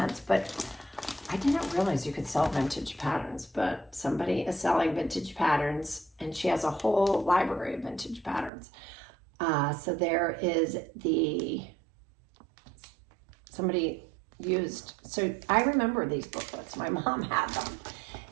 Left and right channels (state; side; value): drops out; left; at 8.5 s